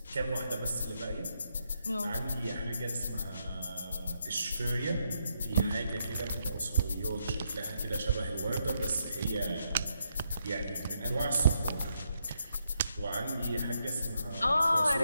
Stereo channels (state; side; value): inverted; both; correlation -0.78